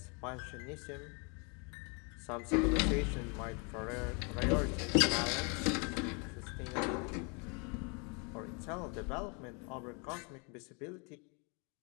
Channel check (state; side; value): quieter; right; 33.8 dB